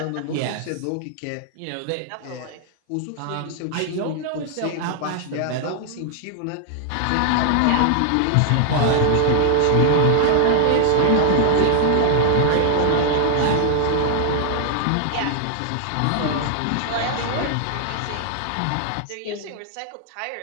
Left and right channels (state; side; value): different; both; correlation 0.00